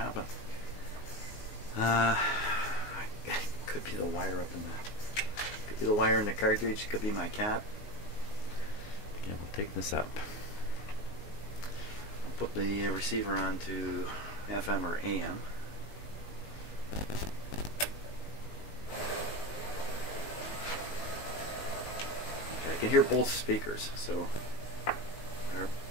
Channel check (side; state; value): right; late; 19 ms